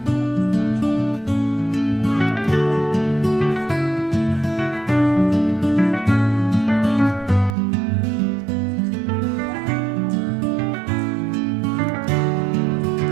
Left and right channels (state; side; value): drops out; left; at 7.6 s